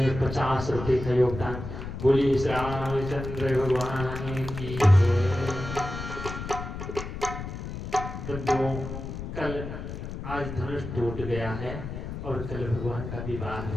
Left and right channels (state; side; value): noise; left; rumble, 7 dB below the sound